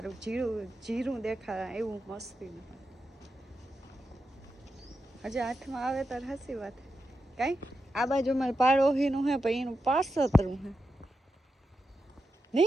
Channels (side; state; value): both; normal; correlation 0.88